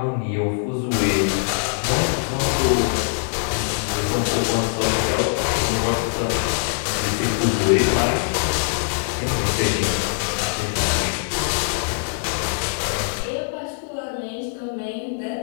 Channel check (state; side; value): silent; right; digital silence